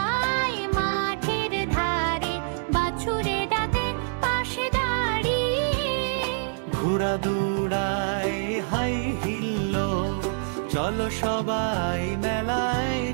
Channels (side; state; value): left; silent; digital silence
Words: মাঠের ধারে, বাছুরে ডাকে পাশে দাঁড়িয়ে। ঘোড়া দৌড়ায় হাই হিল্লো, চলো সবাই মেলায়